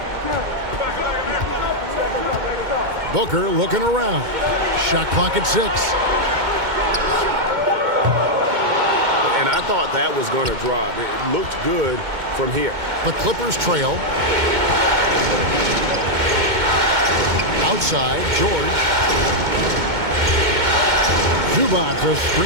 Booker looking around. Shot clock at 6. And I thought that was going to drop. It looked good from here. The Clippers trail. Outside, George. Zubac a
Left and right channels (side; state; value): left; late; 2.2 ms